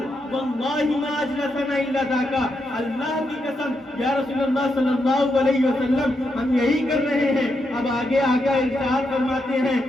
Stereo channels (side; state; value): both; normal; correlation 0.82